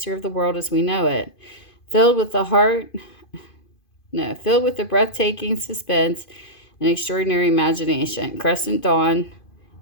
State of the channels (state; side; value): late; right; 2.5 ms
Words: of the world as we know it. Filled with the breathtaking suspense and extraordinary imagination, Crescent Dawn